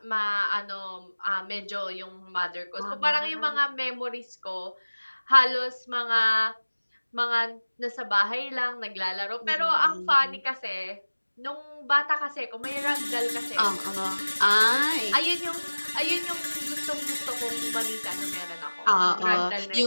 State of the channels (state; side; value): inverted; both; correlation -1.00